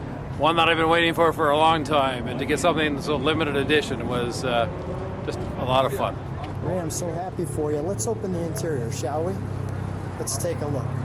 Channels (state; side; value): identical; both; correlation 1.00